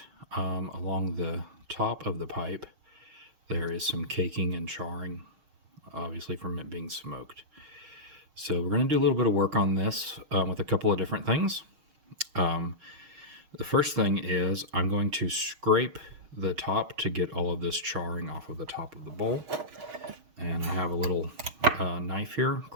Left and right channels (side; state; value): left; late; 6.4 ms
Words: along the top of the pipe there is some caking and charring, obviously from it being smoked. So we're going to do a little bit of work on this with a couple of different things. The first thing is I'm going to scrape the top to get all of this charring off of the top of the bowl. And I have a little knife here,